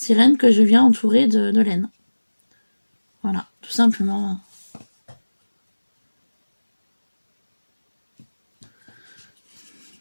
que je viens entourer de laine. Voilà, tout simplement.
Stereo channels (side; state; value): both; inverted; correlation -1.00